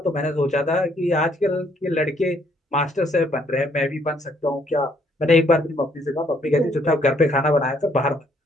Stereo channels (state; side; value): normal; both; correlation 0.67